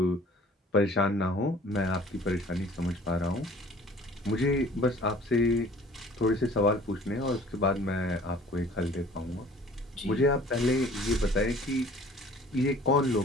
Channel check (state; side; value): normal; both; correlation 0.50